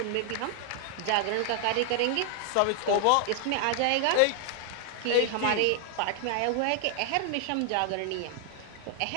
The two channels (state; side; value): different; both; correlation 0.00